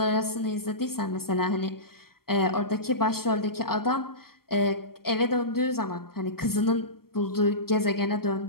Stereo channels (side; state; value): right; late; 0.94 ms